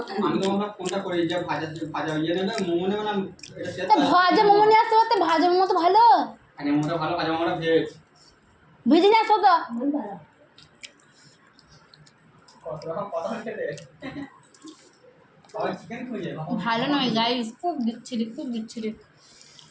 আমি তো আমরা কোনটা করি, যে ভাজা ইয়ে নেবে, মোমো নেবে না, এটা সেটা। ভাজা মোমো নিয়ে আসতে পারতে, ভাজা মোমো তো ভালো। আগে মোমোটা ভালো, ভাজা মোমোটা ভেজ। ভেজে নিয়ে আসো তো। ভালো নয় গাইস, খুব বিচ্ছিরি, খুব বিচ্ছিরি।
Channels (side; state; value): both; identical; correlation 1.00